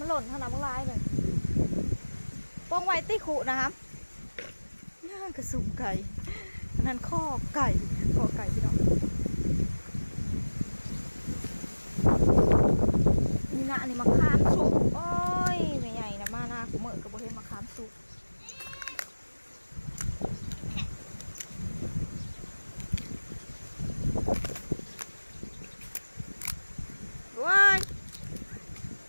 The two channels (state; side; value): inverted; both; correlation -1.00